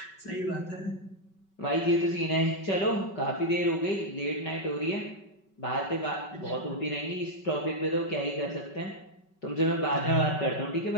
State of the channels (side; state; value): right; late; 5.3 ms